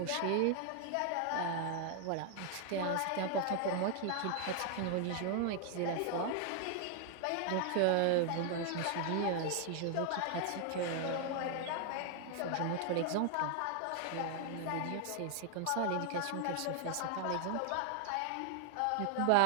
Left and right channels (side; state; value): both; different; correlation 0.00